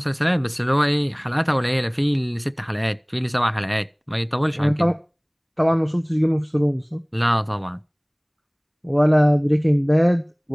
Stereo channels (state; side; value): identical; both; correlation 1.00